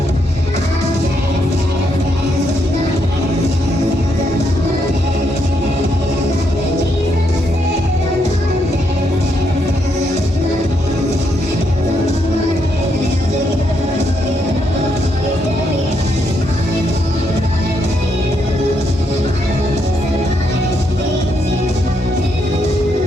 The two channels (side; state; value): both; normal; correlation 0.77